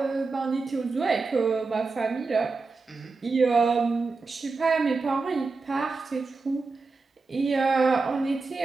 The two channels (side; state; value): left; quieter; 4.1 dB